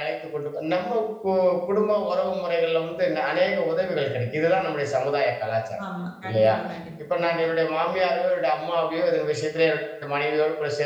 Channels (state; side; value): identical; both; correlation 1.00